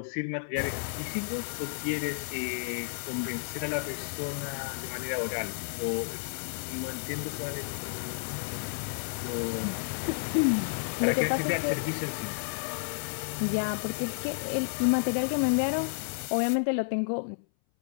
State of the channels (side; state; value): right; silent; 57 dB below the other